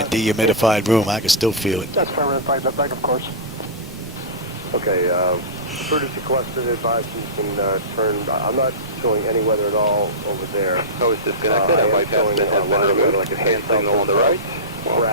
dehumidified room. I can still feel it. That's fine, back of course. Okay, emergency collected advice you can turn. I'm not showing any weather at all over there. I was disconnected. I might have been removed. Like a hand signal on the right. Well,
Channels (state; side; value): normal; both; correlation -0.17